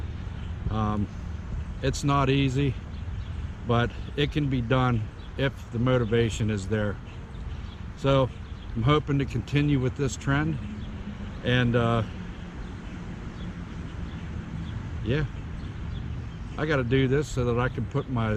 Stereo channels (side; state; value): both; identical; correlation 1.00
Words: it's not easy, but it can be done if the motivation is there. So I'm hoping to continue with this trend, and yeah, I got to do this so that I can put